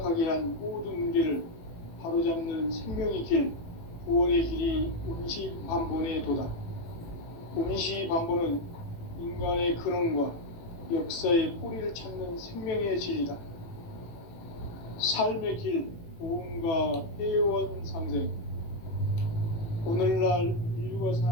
한 모든 문제를 바로잡는 생명의 길, 구원의 길이 운시반본의 도다. 운시반본은 인간의 근원과 역사의 뿌리를 찾는 생명의 진리다. 삶의 길, 보험과 회원 상생. 오늘날 인류가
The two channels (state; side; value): late; right; 18 ms